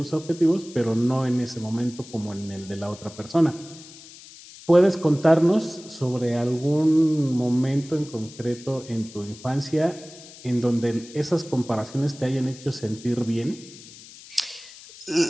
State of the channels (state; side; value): noise; left; hiss, 19 dB below the sound